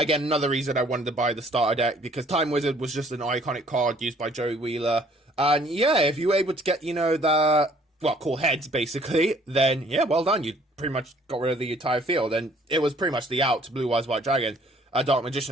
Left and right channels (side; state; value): both; normal; correlation 0.59